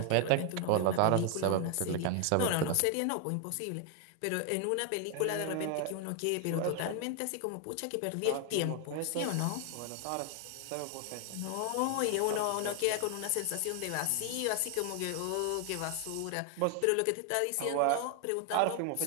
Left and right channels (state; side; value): different; both; correlation 0.00